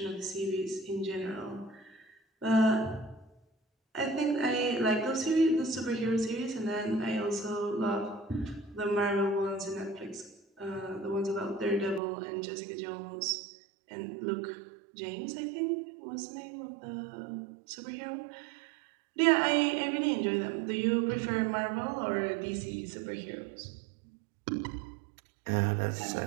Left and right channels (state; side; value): drops out; left; at 12.0 s